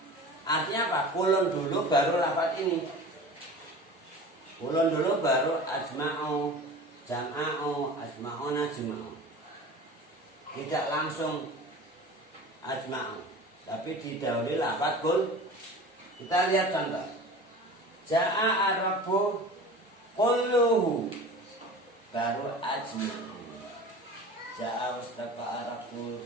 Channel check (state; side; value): normal; both; correlation 0.37